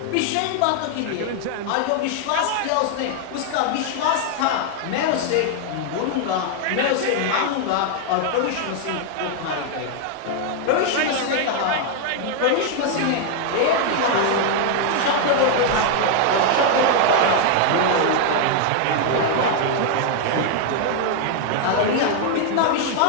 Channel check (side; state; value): both; different; correlation 0.00